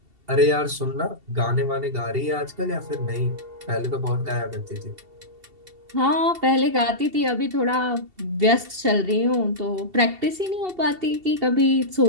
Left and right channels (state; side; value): late; left; 2.7 ms